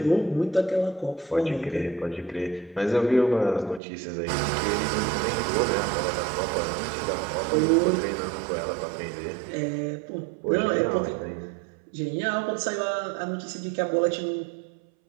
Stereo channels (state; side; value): drops out; left; at 3.8 s